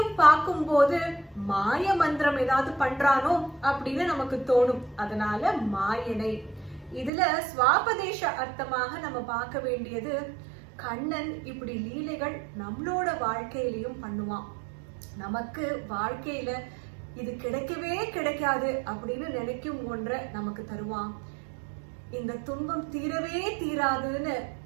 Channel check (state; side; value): drops out; left; at 7.1 s